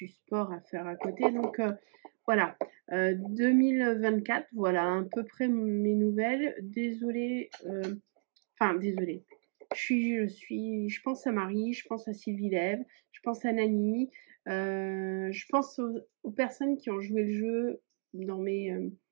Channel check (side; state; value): left; silent; digital silence